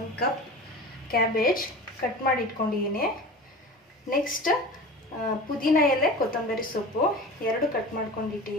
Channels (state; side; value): normal; both; correlation 0.34